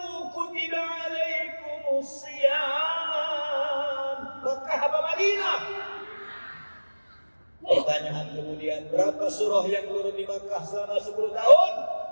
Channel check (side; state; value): both; inverted; correlation -1.00